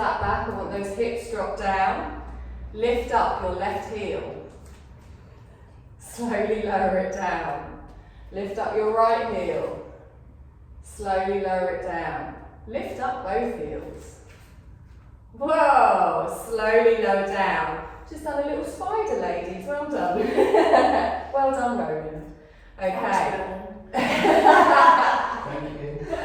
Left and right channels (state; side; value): identical; both; correlation 1.00